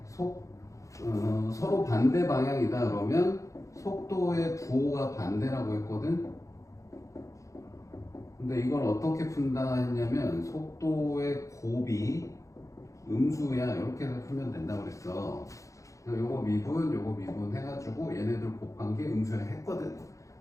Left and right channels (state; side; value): late; right; 0.15 ms